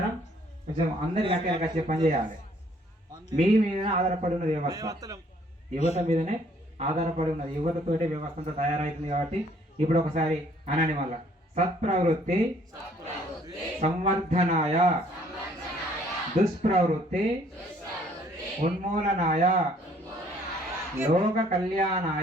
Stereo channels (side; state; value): both; normal; correlation 0.61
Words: కొంచెం అందరికి కట్టేయాలి, వచ్చే పని చేయాలి. మీ మీదనే ఆధారపడి ఉన్నది వ్యవస్థ, యువత మీదనే ఆధారపడి ఉన్నది. యువతతోటే వ్యవస్థ అంతా తయారైతుంది. కాబట్టి ఇప్పుడు ఒకసారి అనండి మళ్ళా, సత్ప్రవృత్తి సంవర్ధనాయ దుష్ప్రవృత్తి ఉన్మూలనాయ లోక